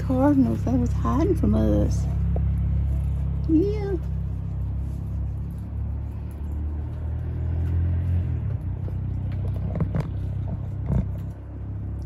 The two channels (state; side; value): identical; both; correlation 1.00